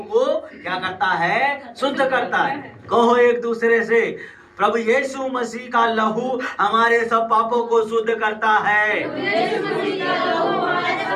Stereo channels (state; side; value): identical; both; correlation 1.00